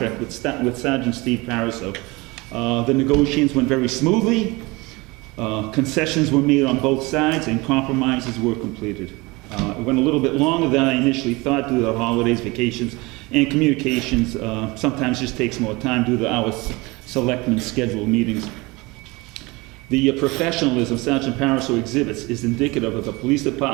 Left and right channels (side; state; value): left; quieter; 23.9 dB